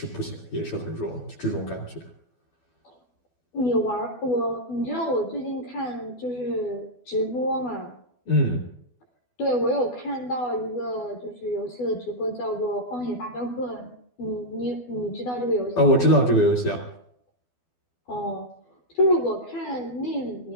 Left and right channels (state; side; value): late; right; 12 ms